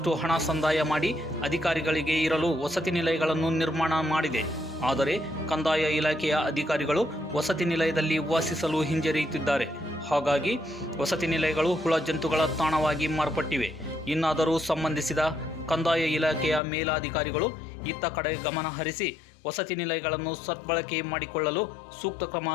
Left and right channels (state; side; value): drops out; right; at 16.6 s